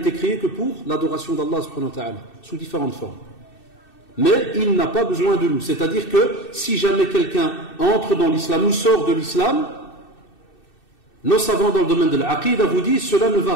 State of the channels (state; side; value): late; right; 2.6 ms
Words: créé que pour l'adoration d'Allah subhanahu wa ta'ala, sous différentes formes. Mais il n'a pas besoin de nous. C'est-à-dire que si jamais quelqu'un entre dans l'islam ou sort de l'islam, Nos savants dans le domaine de l'aqida vous disent cela ne va